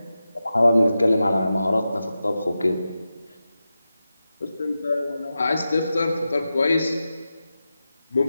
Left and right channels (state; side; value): inverted; both; correlation -0.92